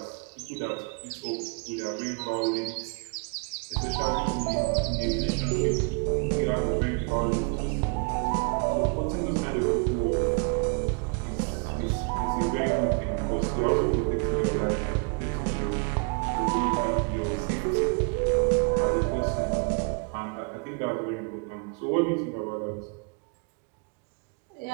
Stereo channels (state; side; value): quieter; left; 35.9 dB